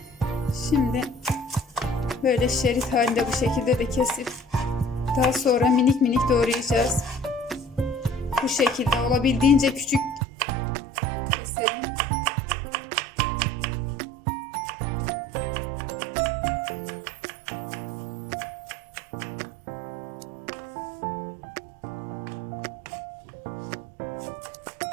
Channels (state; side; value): drops out; left; at 10.2 s